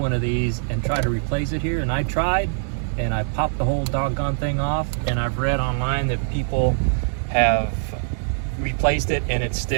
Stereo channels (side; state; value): left; silent; digital silence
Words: of these and try to replace it here, and I tried and I popped the whole doggone thing off, and I've read online that people have replaced it and it